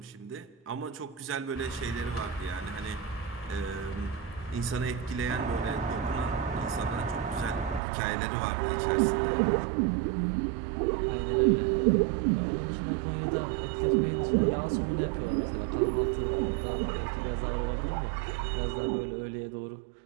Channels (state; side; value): drops out; left; at 7.8 s